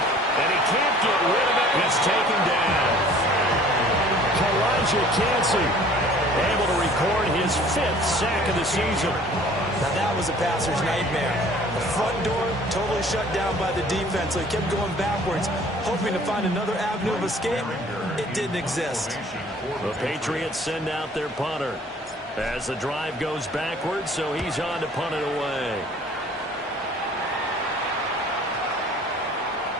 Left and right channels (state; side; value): normal; both; correlation 0.51